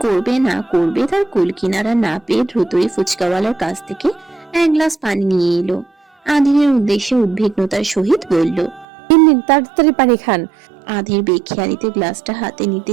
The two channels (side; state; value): left; drops out; at 8.8 s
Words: করবে না করবে তার কুল কিনারা না পেয়ে দ্রুতই ফুচকাওয়ালার কাছ থেকে এক গ্লাস পানি নিয়ে এলো। আধিরের উদ্দেশ্যে উদ্বিগ্নতার সহিত বলল, নিন তাড়াতাড়ি পানি খান। আধির বেখেয়ালিতে গ্লাসটা হাতে নিতে